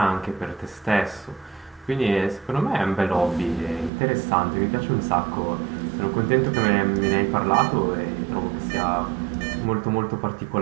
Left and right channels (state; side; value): drops out; left; at 3.9 s